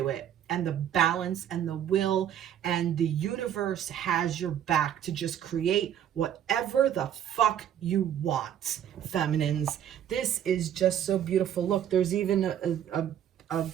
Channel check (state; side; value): quieter; left; 10.0 dB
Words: it, and the balance and the will, and the universe has your back to just create whatever the fuck you want, feminines. This is just so beautiful. Look, there's even a